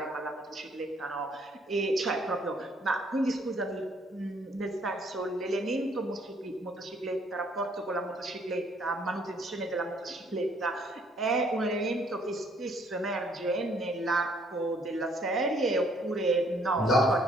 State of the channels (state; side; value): normal; both; correlation 0.65